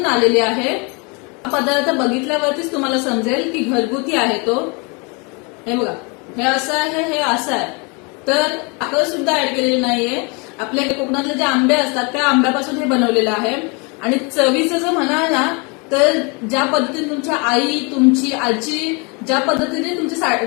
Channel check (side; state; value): right; quieter; 31.3 dB